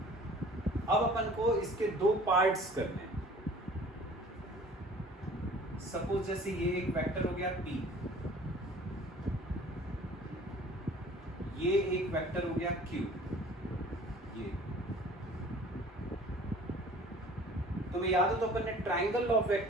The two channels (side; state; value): both; normal; correlation 0.49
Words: अब अपन को इसके दो पार्ट्स करने हैं। सपोज जैसे ये एक वेक्टर हो गया P, ये एक वेक्टर हो गया Q। ये तुम्हें याद हो तो अपन ने ट्राइंगल ऑफ